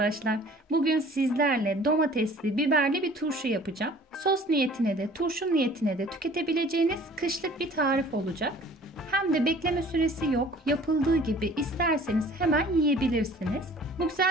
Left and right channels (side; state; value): both; normal; correlation 0.50